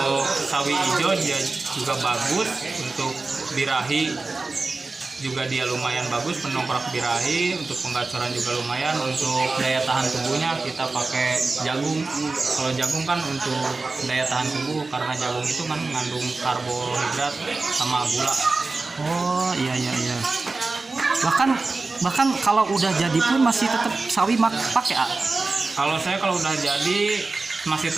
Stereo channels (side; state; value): left; quieter; 3.6 dB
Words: sawi hijau dia juga bagus, untuk birahi juga dia lumayan bagus, pendongkrak birahi. Untuk penggacoran juga lumayan. Untuk daya tahan tubuhnya kita pakai jagung. Kalau jagung kan untuk daya tahan tubuh, karena jagung itu kan mengandung karbohidrat sama gula. Oh iya, iya, iya. Bahkan kalau udah jadi pun masih tetap sawi pakai Kalau saya kalau udah jadi masih